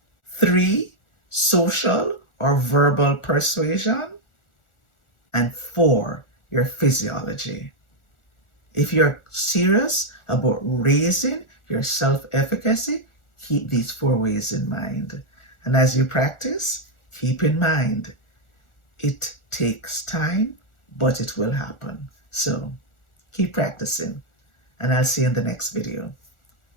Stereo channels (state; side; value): late; right; 1.4 ms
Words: 3, social or verbal persuasion. And 4, your physiology. If you're serious about raising your self-efficacy, keep these 4 ways in mind. And as you practice, keep in mind, it takes time, but it will happen. So keep practicing, and I'll see you in the next video.